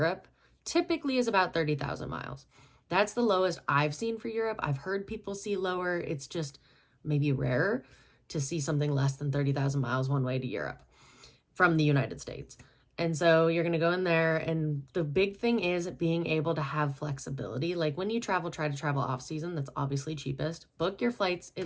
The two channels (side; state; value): both; identical; correlation 1.00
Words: typically is about 30,000 miles. That's the lowest I've seen for Europe. I've heard people see lower. It's just maybe rarer to see something less than 30,000 miles one way to Europe from the United States. And so you're going to go in there, and the big thing is being able to have flexibility. When you travel, try to travel off season. That's obviously cheapest. Book your flights